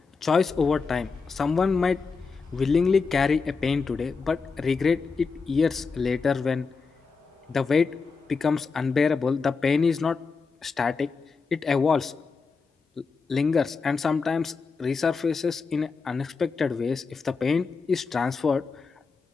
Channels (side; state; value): right; quieter; 4.8 dB